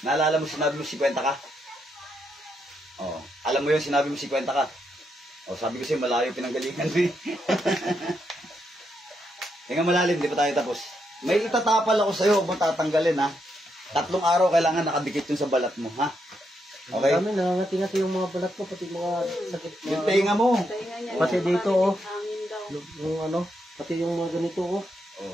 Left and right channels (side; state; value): both; normal; correlation 0.80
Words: Naalala mo sinabi mo 50 ka? Oo. Alam mo yun, sinabi mo 50 ka? O, sabi ko sa'yo, malayo pinanggalingan mo eh. Tingnan malalim, di pa tayo tapos. May itatapal ako sa'yo, huwag mo tatanggalin ha. 3 araw kailangan nakadikit yun sa balat mo ha. Okay? Kami nangangati-ngati yung mga balat ko, pati mga sakit. Yung tenga mo. Pati dito oh. Yung ano, pati yung mga ganito oh.